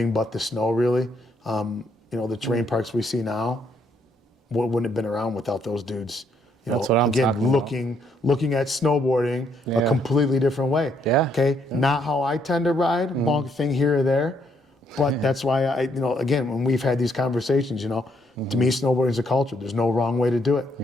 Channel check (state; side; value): normal; both; correlation 0.72